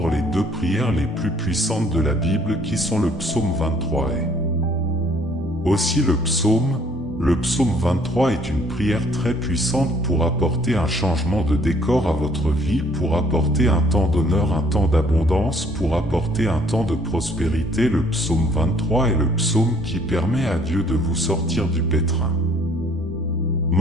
les 2 prières les plus puissantes de la Bible qui sont le psaume 23 et aussi le psaume 23 est une prière très puissante pour apporter un changement de décor à votre vie, pour apporter un temps d'honneur, un temps d'abondance, pour apporter un temps de prospérité. Le psaume 23 est le psaume qui permet à Dieu de vous sortir du pétrin.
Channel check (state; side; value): normal; both; correlation 0.60